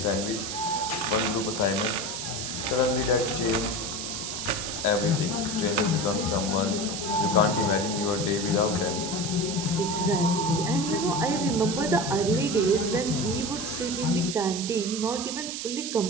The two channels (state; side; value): noise; right; hiss, 5 dB below the sound